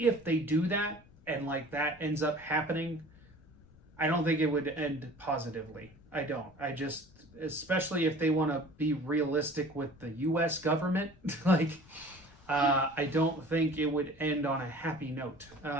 they do that and like that ends up happening, I don't think it would end positively. I don't. I just, especially if they want to be realistic with the U.S. government, like, I don't think it would end on a happy note.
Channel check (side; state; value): left; noise; rumble, 26 dB below the sound